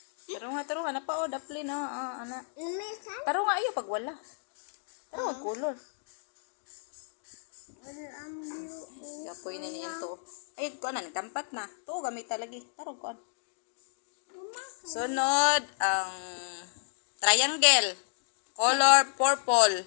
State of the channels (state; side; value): silent; right; digital silence